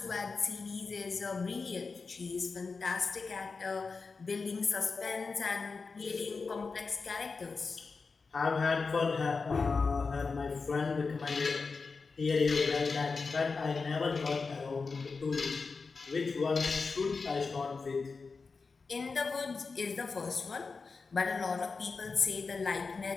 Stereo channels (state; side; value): quieter; right; 4.5 dB